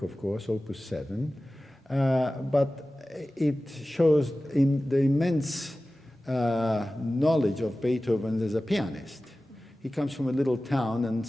of course, Opus 7, but it shows the immense knowledge of Beethoven as a pianist. He comes from a little town and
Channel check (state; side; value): normal; both; correlation 0.96